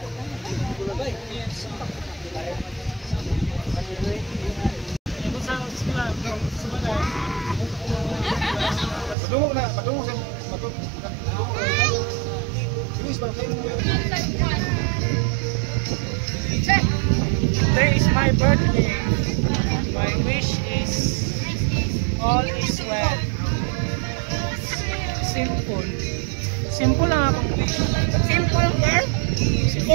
Padungog na, padungog sa Today is my birthday. My wish is all is well. Simple. Simple lang akong wish. Simple girl?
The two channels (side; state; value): left; drops out; at 9.2 s